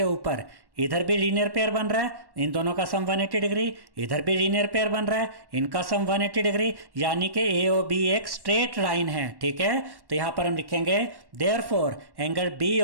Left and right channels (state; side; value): late; left; 1.1 ms